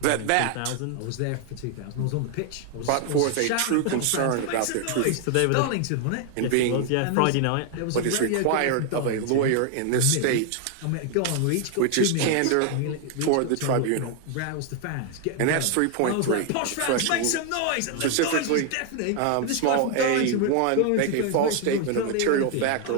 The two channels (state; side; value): different; both; correlation 0.00